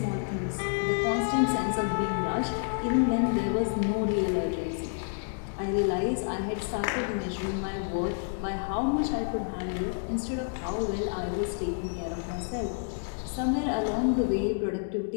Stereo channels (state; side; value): silent; right; digital silence